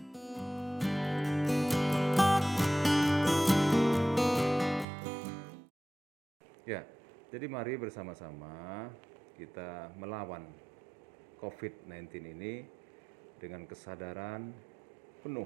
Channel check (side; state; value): left; drops out; at 4.9 s